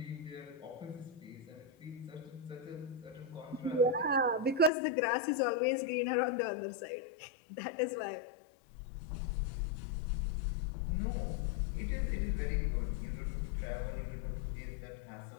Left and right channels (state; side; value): drops out; right; at 4.7 s